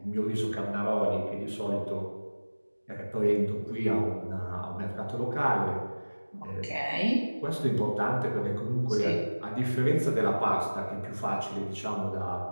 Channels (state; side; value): inverted; both; correlation -1.00